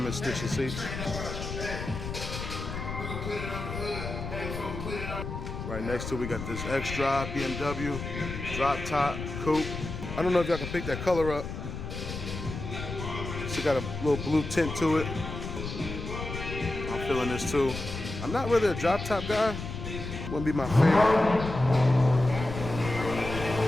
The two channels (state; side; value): noise; left; rumble, 7 dB below the sound